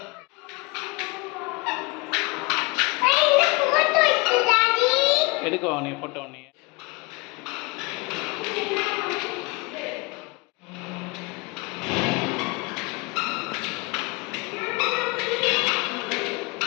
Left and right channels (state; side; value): quieter; right; 26.9 dB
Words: எடுக்கவா நீ ஃபோட்டோ நீ?